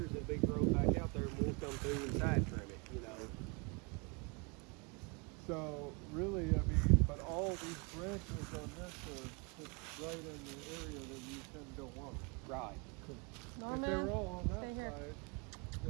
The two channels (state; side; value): quieter; left; 31.3 dB